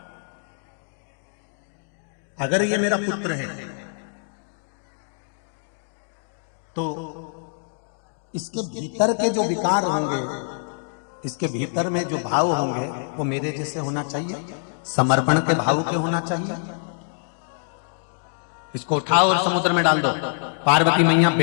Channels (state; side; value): silent; right; digital silence